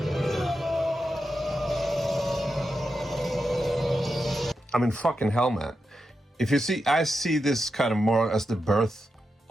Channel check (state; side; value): normal; both; correlation 0.88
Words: I mean, fucking hell, man. If you see, I see this kind of more as the birth